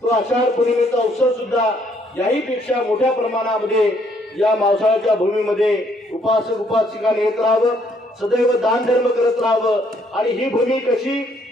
तो आषाढ पौर्णिमेचा उत्सव सुद्धा याही पेक्षा मोठ्या प्रमाणामध्ये या मावसाळ्याच्या भूमीमध्ये उपासक उपासिकांनी येत राहावं, सदैव दान धर्म करत राहावं आणि ही भूमी कशी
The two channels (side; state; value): both; normal; correlation 0.67